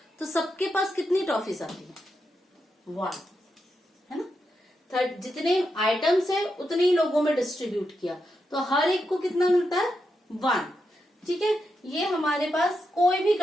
तो सबके पास कितनी टॉफीज आती है, 1, है ना। जितने आइटम्स है उतने ही लोगों में डिस्ट्रीब्यूट किया तो हर एक को कितना मिलता है, 1। ठीक है, ये हमारे पास कोई भी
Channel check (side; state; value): both; normal; correlation 0.85